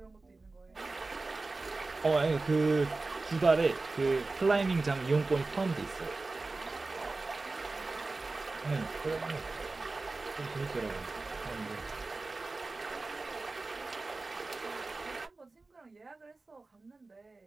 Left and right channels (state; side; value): quieter; left; 3.5 dB